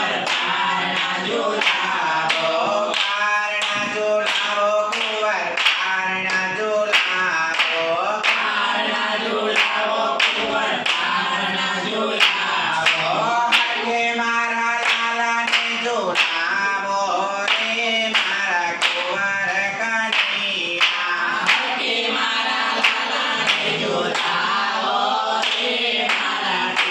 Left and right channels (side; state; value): both; identical; correlation 1.00